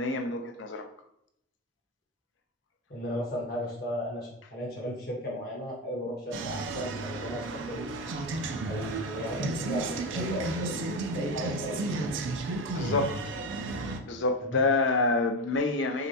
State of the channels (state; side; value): normal; both; correlation 0.16